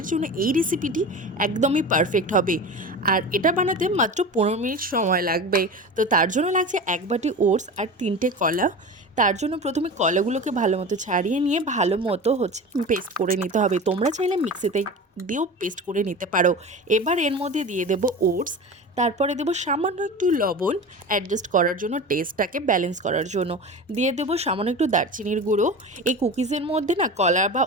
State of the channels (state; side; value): normal; both; correlation 0.31